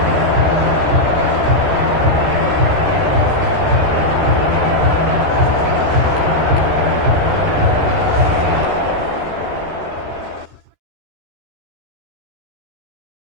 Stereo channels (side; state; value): left; late; 13 ms